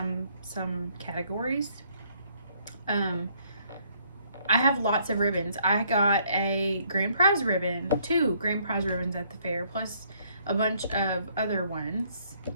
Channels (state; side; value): inverted; both; correlation -0.66